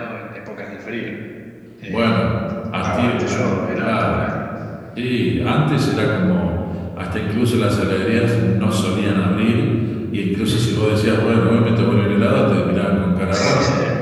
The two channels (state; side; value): identical; both; correlation 1.00